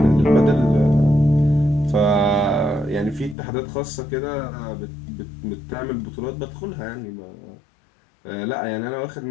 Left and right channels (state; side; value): drops out; right; at 3.4 s